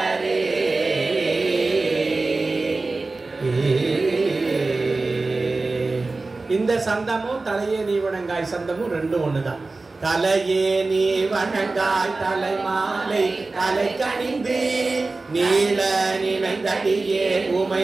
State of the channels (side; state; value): left; quieter; 3.5 dB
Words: இந்த சந்தமும் தலையே நீ வணங்காய் சந்தமும் ரெண்டும் ஒண்ணுதான். தலையே நீ வணங்காய் தலை மாலை தலை கணிந்து நீள நினைந்தடியே உமை